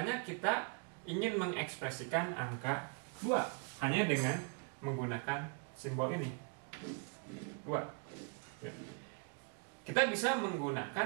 kita ingin mengekspresikan angka 2 hanya dengan menggunakan simbol ini, 2, ya. Kita bisa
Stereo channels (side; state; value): left; quieter; 38.2 dB